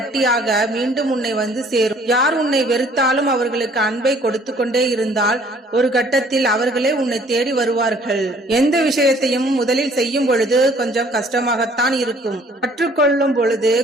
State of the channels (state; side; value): normal; both; correlation 0.57